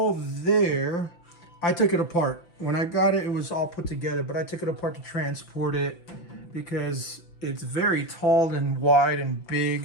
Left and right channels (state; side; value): late; right; 5.8 ms